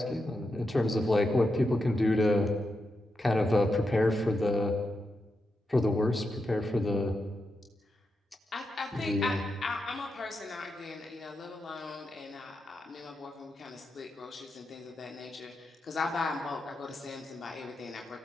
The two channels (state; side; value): normal; both; correlation 0.87